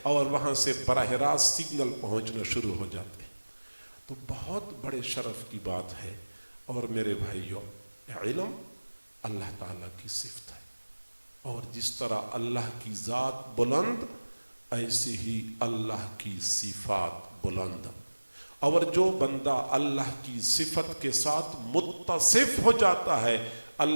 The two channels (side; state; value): both; inverted; correlation -1.00